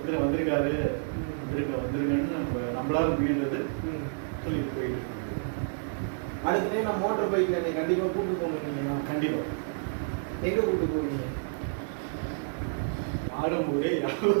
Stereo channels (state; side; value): silent; left; digital silence